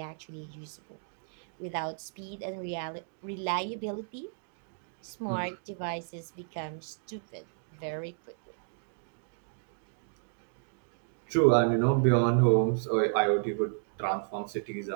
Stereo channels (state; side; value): silent; left; digital silence